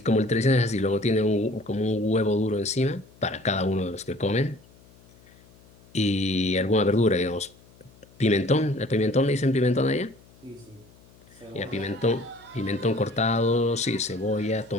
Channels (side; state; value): left; noise; hum, 27 dB below the sound